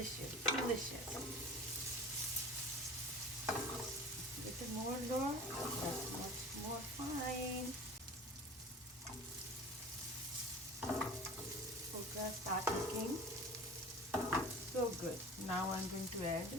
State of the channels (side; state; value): both; normal; correlation 0.38